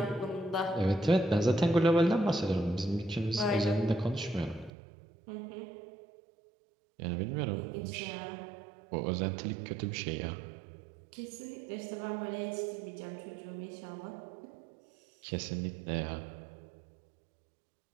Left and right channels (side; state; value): left; drops out; at 4.7 s